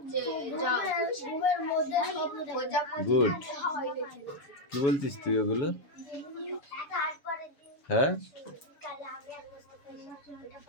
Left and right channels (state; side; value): late; right; 7.1 ms